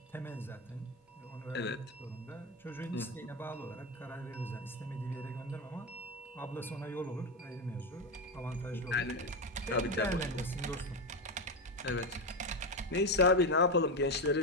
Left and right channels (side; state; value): both; normal; correlation 0.12